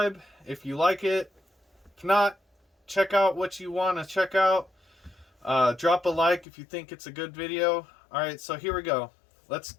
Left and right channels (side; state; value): right; drops out; at 6.5 s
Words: if you like it. If not, check out what you want to check out. Drop a like if you think it's a good video. Alright, so here we go. Let's